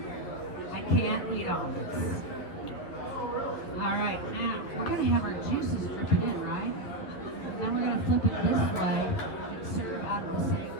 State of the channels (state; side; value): late; right; 12 ms